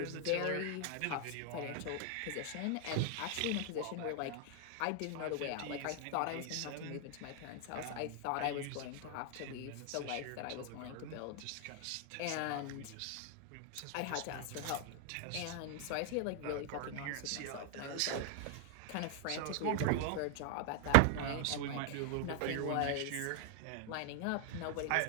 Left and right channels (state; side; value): different; both; correlation 0.00